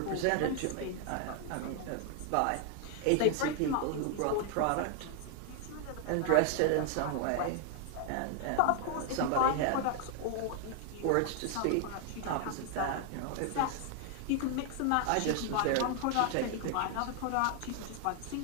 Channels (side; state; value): both; different; correlation 0.00